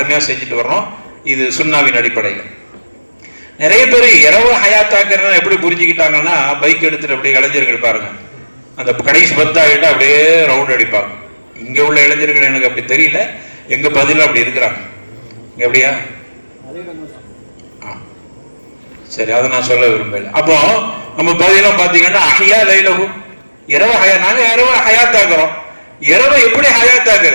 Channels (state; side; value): inverted; both; correlation -1.00